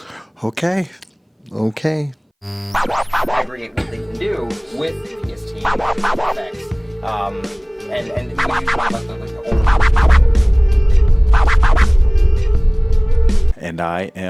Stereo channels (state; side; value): identical; both; correlation 1.00